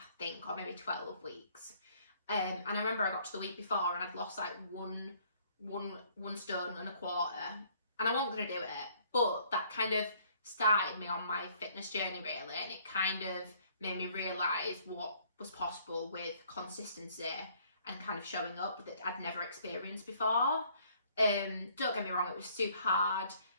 think, or maybe 12 weeks. And I remember I got to the week before and I'd lost like one stone and a quarter. And I wasn't going to do it. But that kind of started me on my fitness journey, really. And it kind of made me realise what was possible with consistency and kind of showing up that I'd never experienced before. Don't get me wrong, it was super hard.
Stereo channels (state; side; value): inverted; both; correlation -0.61